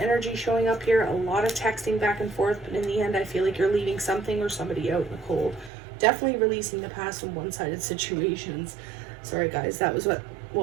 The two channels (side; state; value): left; drops out; at 5.7 s